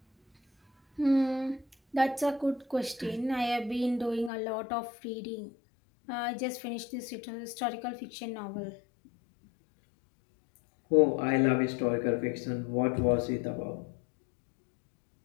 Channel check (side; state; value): right; drops out; at 4.3 s